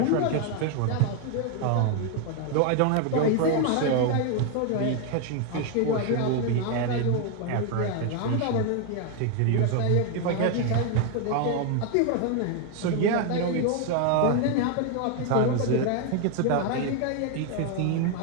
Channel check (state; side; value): different; both; correlation 0.01